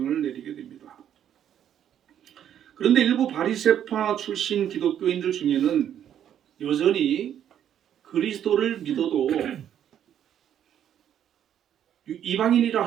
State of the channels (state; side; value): quieter; left; 10.0 dB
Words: 내리게 됩니다. 그런데 일부 바리새파 출신 기독교인들 중에는 여전히 그리스도를 믿어도 이방인이라